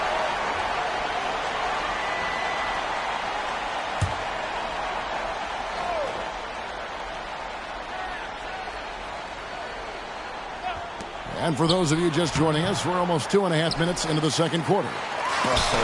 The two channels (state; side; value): identical; both; correlation 1.00